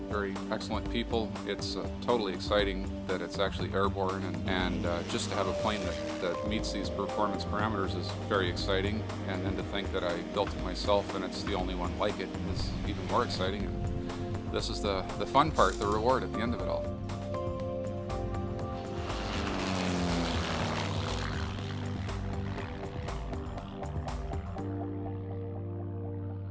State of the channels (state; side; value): identical; both; correlation 1.00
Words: very excellent people, it's totally exciting that it's actually airborne, and just to have a plane that meets these performance parameters is very exciting, and then to think that I built it myself and it's the only one like it is even more exciting. And this is the fun part, the reward at the end of it all.